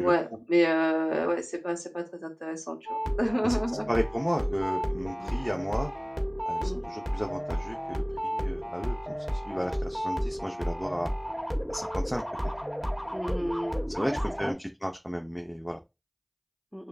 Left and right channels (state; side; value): identical; both; correlation 1.00